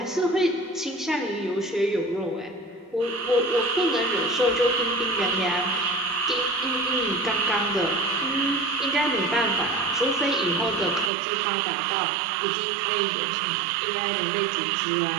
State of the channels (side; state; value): left; drops out; at 11.1 s